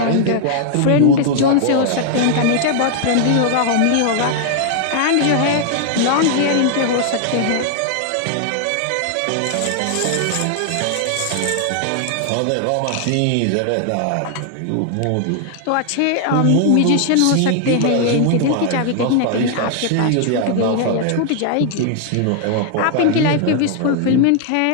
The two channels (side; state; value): both; different; correlation 0.00